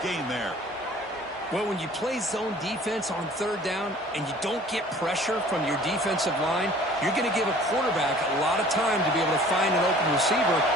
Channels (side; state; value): both; normal; correlation 0.50